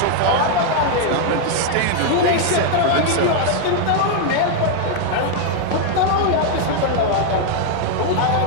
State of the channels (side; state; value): both; different; correlation 0.00